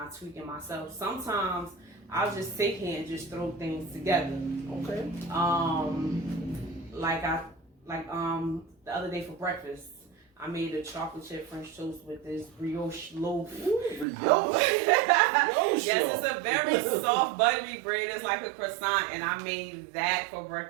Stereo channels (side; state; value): left; drops out; at 14.1 s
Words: tweak it myself. Sometimes I'll just sit here and just throw things together. Okay. The other day for breakfast, I made a chocolate chip French toast with this brioche loaf. Brioche? Yes, it's a very soft, buttery bread. It's like a croissant, and I made that for